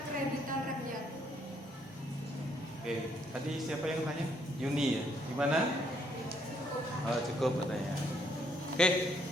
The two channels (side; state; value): both; normal; correlation 0.70